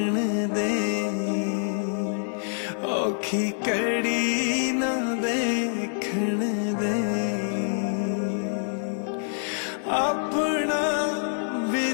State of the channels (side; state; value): right; silent; digital silence